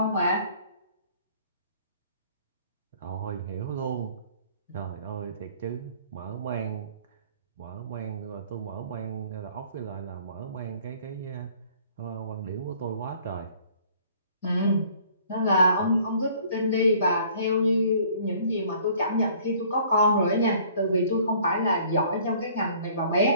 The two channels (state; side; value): inverted; both; correlation -0.55